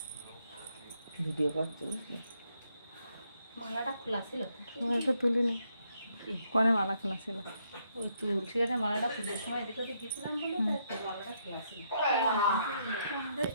ভিডিও করতে মালাটা খোলা ছিল তো তুলিনি কনে মালা খোলা ছিল ওই তুলসী গাছের মালাটা পুজোর সময় এদিকে ওদিকে গেছিলাম বলে তাই মালাটা খোলা ছিল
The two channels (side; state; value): both; inverted; correlation -0.76